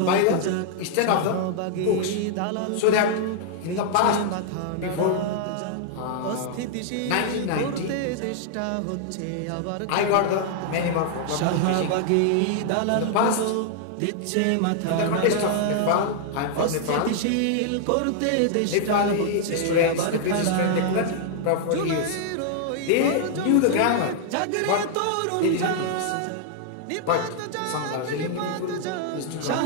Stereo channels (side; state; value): both; different; correlation -0.01